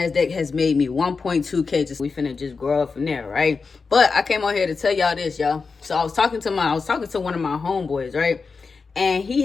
has made me 1.2K. We finna just grow up from there, right? But I came on here to tell y'all this, y'all. So I was talking to one of my homeboys, right? And he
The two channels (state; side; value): quieter; right; 4.7 dB